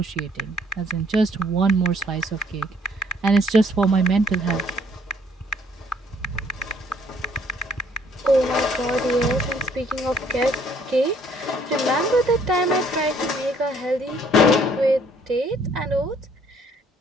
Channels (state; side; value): normal; both; correlation 0.62